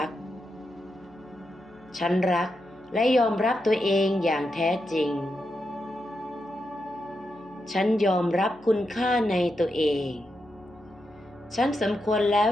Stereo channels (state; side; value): noise; left; hum, 29 dB below the sound